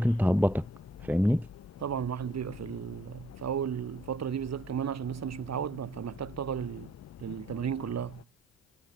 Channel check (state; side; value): normal; both; correlation 0.65